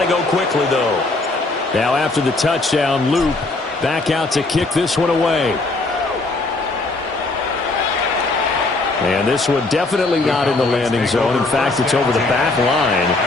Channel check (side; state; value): right; quieter; 3.2 dB